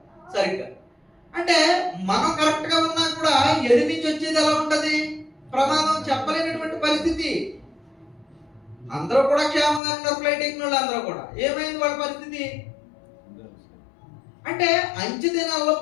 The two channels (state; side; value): drops out; right; at 9.8 s